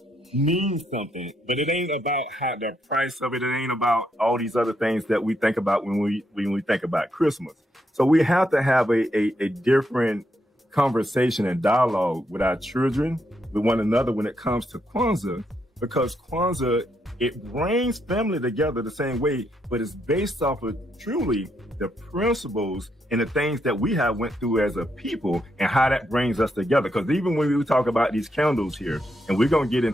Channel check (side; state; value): both; normal; correlation 0.78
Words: mean something. But it ain't about the price of it. It ain't about all these other things that we think about when we think about Christmas. So we have to have a different conversation and dialogue with our children, with one another when it comes to Kwanzaa, because Kwanzaa, it brings family together the same way, but it's based off of truly the principles and the things that we have went through as a people and how that brings us together. Because even when we talk about these candles here, and we're going to get